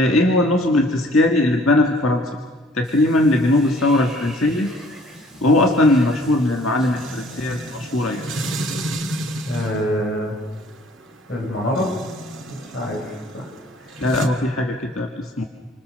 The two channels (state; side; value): normal; both; correlation 0.56